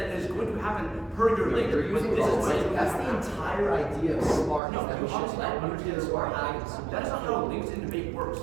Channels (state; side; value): drops out; left; at 4.6 s